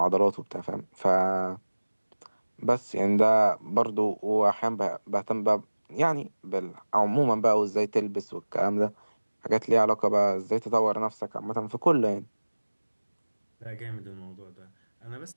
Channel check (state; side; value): inverted; both; correlation -1.00